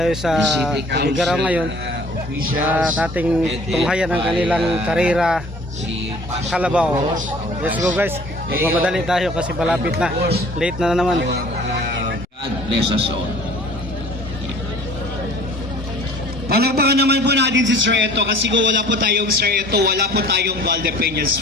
sa Igaraw ngayon sa ating tunghayan ng kanilang karera Kalabaw. Let's go guys, magmamadali tayo kasi malapit na, late na naman. God bless us all. Palakpakan naman po natin si Sir Eto kasi kung wala po tayong Sir Eto, wala po tayong Valdepeñas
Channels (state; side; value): normal; both; correlation 0.50